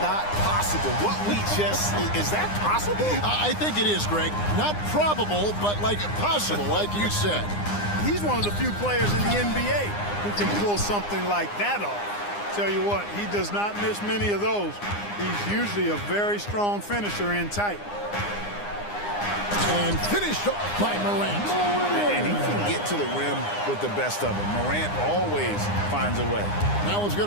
possible. What we just, is that possible? I think it is, Greg. Not probable, but like possible, like you said. He's one of the few players in the NBA who can pull something like that off. Tell you what, he does not miss many of those. He's usually a very strong finisher in tight. And finished off by Morant. And he can get to the rim with the best of them. Morant always finds a way. Now let's go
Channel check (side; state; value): right; late; 9.8 ms